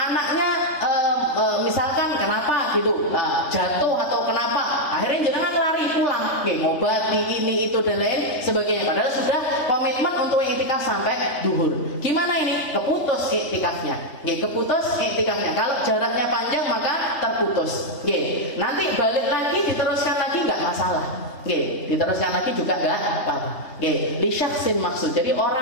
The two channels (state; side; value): late; right; 3.3 ms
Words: misalkan kenapa gitu, jatuh atau kenapa?" Akhirnya jangan lari pulang, ngobati ini itu dan lain sebagainya. Padahal sudah komitmen untuk iktikaf sampai duhur. Gimana ini? Keputus iktikafnya. Keputus iktikafnya. Kalau jaraknya panjang maka terputus. Nanti balik lagi diteruskan lagi nggak masalah. Diteruskan lagi juga nggak apa-apa. Li syakhsin maksud. Jadi